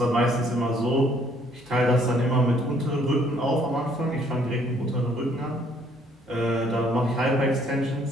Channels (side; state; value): both; normal; correlation 0.64